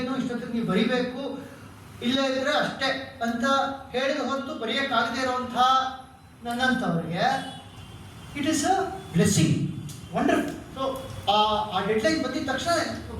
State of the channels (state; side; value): identical; both; correlation 1.00